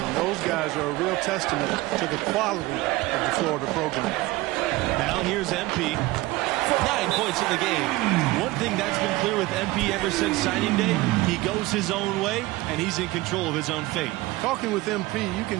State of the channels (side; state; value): left; quieter; 19.5 dB